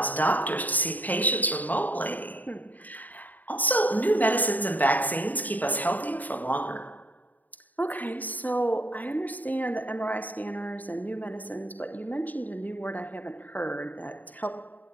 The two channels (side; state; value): right; late; 0.082 ms